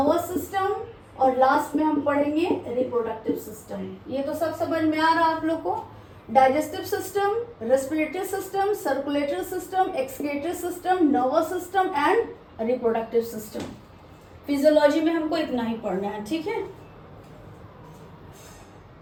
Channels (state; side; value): identical; both; correlation 1.00